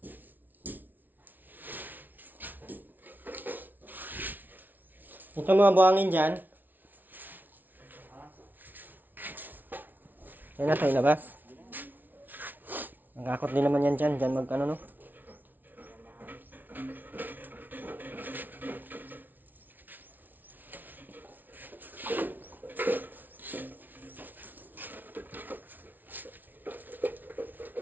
Ito mga buhangin dyan. Yan na ito ilabas. Nagkakot din naman yan dyan. Dyan mag ano no.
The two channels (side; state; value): left; late; 0.085 ms